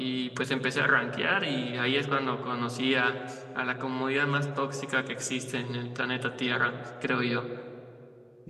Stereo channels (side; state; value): both; identical; correlation 1.00